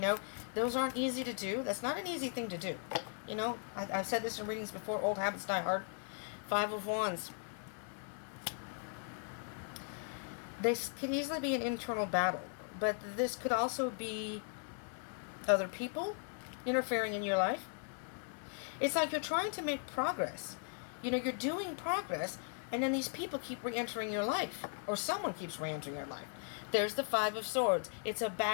those aren't easy to do. That's not an easy thing to do. You know, I've said this in readings before, old habits die hard. Five of Wands. This could easily be an internal battle, but this could also be other people interfering in your life. It's like you're trying to make progress. You know, you're doing progress, and then these people keep re-entering your life, or someone keeps re-entering your life. There's the Five of Swords. It's a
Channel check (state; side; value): silent; right; 52 dB below the other